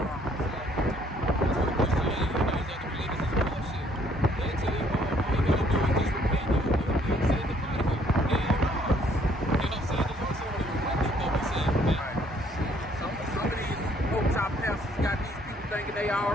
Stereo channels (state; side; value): normal; both; correlation 0.64